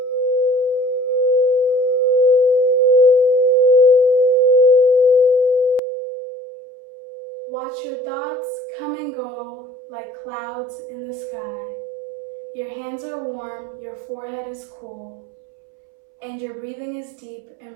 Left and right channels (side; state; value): left; drops out; at 5.8 s